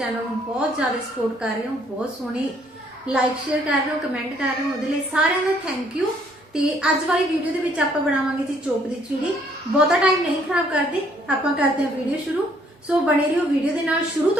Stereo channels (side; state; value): both; normal; correlation 0.65